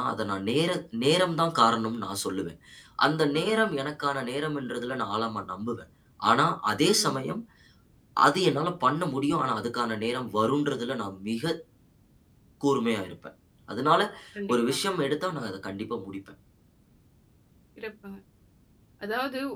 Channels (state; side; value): identical; both; correlation 1.00